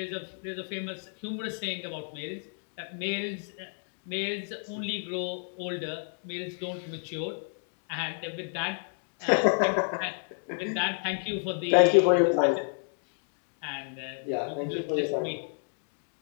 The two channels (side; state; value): right; silent; 57 dB below the other